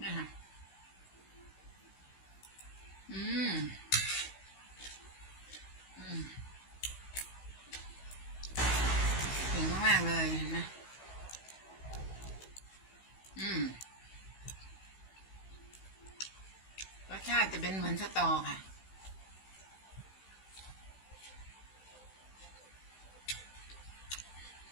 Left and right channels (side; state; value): right; late; 16 ms